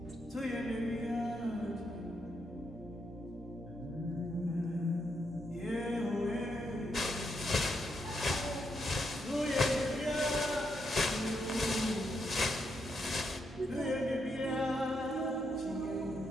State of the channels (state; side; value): normal; both; correlation 0.80